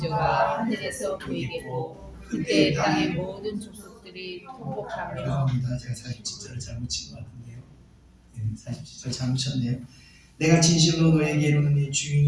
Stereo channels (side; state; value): both; identical; correlation 1.00